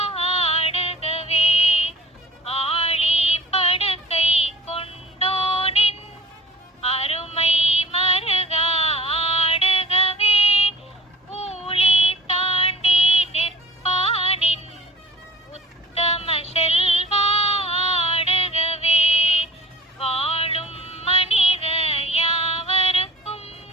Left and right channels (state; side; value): normal; both; correlation 0.46